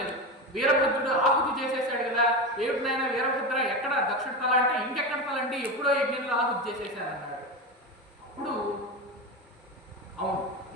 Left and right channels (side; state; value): both; normal; correlation 0.20